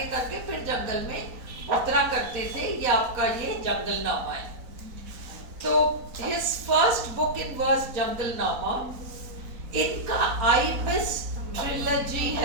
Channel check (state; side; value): late; left; 4.0 ms